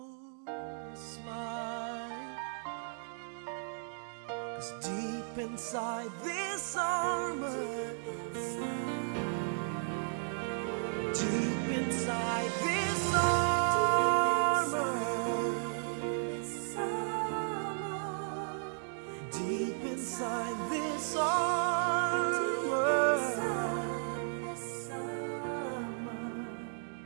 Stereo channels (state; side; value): silent; left; digital silence